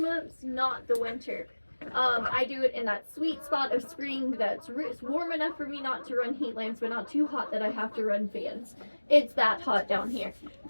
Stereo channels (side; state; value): both; inverted; correlation -1.00